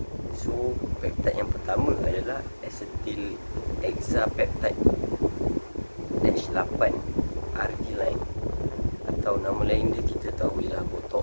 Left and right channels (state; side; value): inverted; both; correlation -1.00